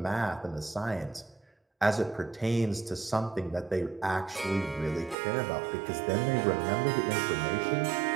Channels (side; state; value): left; drops out; at 5.2 s